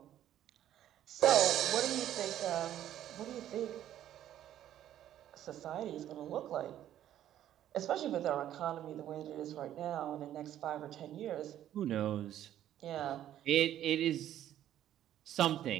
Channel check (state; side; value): quieter; left; 11.7 dB